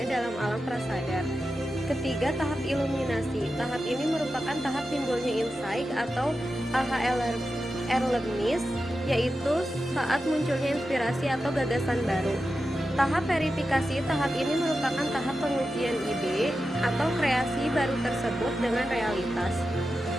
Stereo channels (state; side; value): normal; both; correlation 0.91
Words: dalam alam prasadar. Ketiga, tahap iluminasi. Tahap ini merupakan tahap timbulnya insight atau awareness, yaitu saat munculnya inspirasi atau gagasan baru. Tahap verifikasi. Tahap ini merupakan tahap pengujian ide atau kreasi baru tersebut dengan realitas.